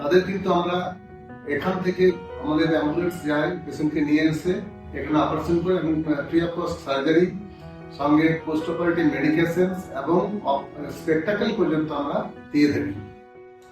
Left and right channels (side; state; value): both; identical; correlation 1.00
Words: কিন্তু আমরা এখান থেকে আমাদের অ্যাম্বুলেন্স যায় পেশেন্টকে নিয়ে এসে এখানে অপারেশন করে এবং ফ্রি অফ কস্ট সার্জারি সঙ্গে পোস্ট অপারেটিভ মেডিকেশন এবং স্পেকটাকেল পর্যন্ত আমরা দিয়ে থাকি।